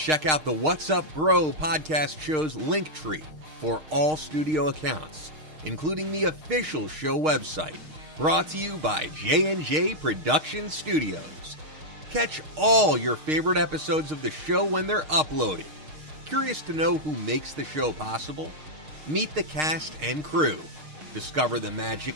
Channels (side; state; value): left; late; 6.5 ms